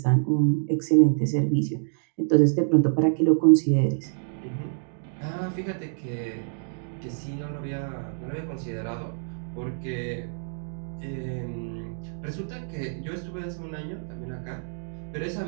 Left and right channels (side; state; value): left; silent; digital silence